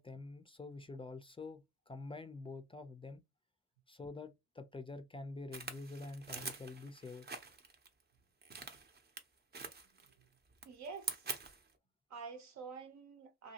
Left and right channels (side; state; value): both; normal; correlation 0.34